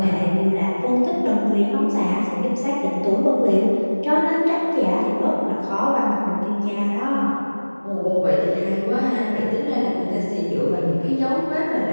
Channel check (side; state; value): both; inverted; correlation -1.00